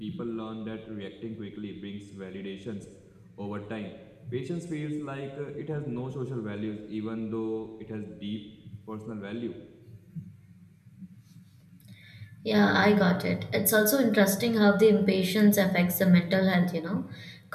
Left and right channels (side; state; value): both; identical; correlation 1.00